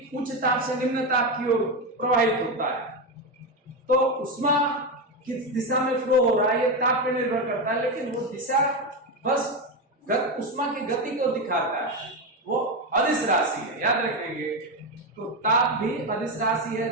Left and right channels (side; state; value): both; normal; correlation 0.12